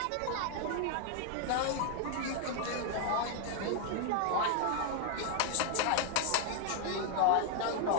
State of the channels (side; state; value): both; different; correlation 0.00